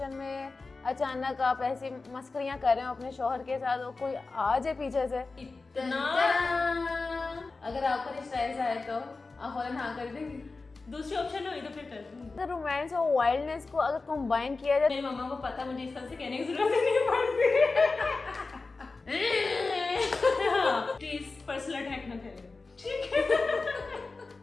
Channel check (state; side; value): quieter; right; 3.8 dB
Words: में अचानक आप ऐसी मस्करियां कर रहे हो अपने शौहर के साथ और कोई आ जाए पीछे से इतना अगर आपका रिश्ता ऐसा है तो आप फौरन हाँ कर देंगे। दूसरी ऑप्शन हुई तो फिर कर दूंगी। अगर रोमांस और वाइल्डनेस को अगर कंबाइन किया जाए मेरी मम्मा को पता, मुझे इस तरह से कहने की जरूरत ही नहीं पड़ती। प्लीज पर्सनल अटैक न करें, ठीक है?